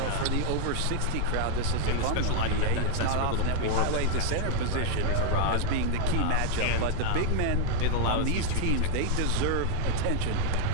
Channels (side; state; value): both; different; correlation 0.00